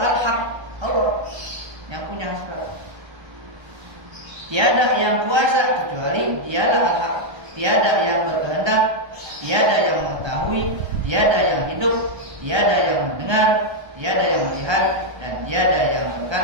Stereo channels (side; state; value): left; late; 1.3 ms